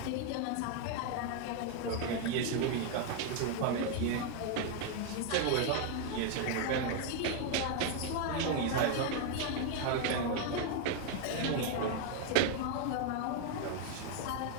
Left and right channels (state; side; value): different; both; correlation 0.01